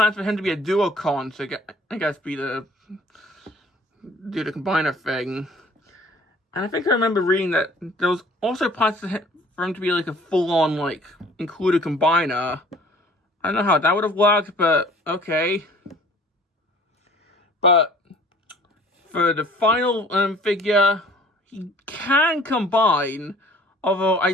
for him to be a duocon, so I guess do the combiner thing. And I think I remember reading that there was also plans for him to be like a full-on, like, included combiner. I don't know how that would have worked, but okay. But for the final figure, he can combine, although I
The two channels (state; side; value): normal; both; correlation 0.51